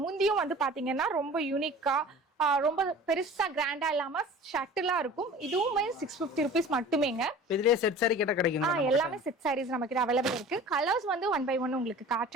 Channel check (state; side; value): normal; both; correlation 0.41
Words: முந்தியும் வந்து பாத்தீங்கன்னா ரொம்ப யூனிக்கா ரொம்ப பெருசா கிராண்டா இல்லாம ஷட்டிலா இருக்கும். இதுவுமே 650 ருபீஸ் மட்டுமேங்க. இதுலயே செட் சாரி கேட்டா கிடைக்கும். எல்லாமே செட் சாரீஸ் நம்ம கிட்ட அவைலபிள் இருக்கு. கலர்ஸ் வந்து 1 by 1 உங்களுக்கு